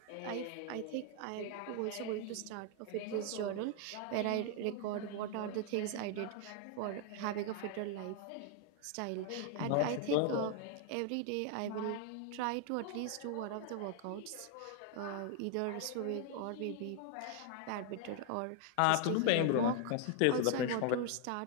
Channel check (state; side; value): different; both; correlation 0.00